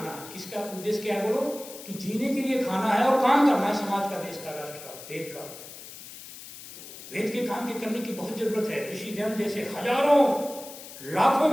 किसका उद्देश्य क्या है बोलो? कि जीने के लिए खाना है और काम करना है, समाज का, देश का, राष्ट्र का, वेद का। वेद के काम के करने की बहुत जरूरत है। ऋषि ध्यान जैसे हजारों लाखों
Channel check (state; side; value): noise; left; hiss, 14 dB below the sound